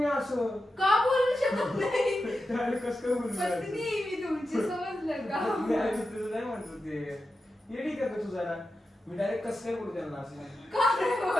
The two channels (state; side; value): normal; both; correlation 0.90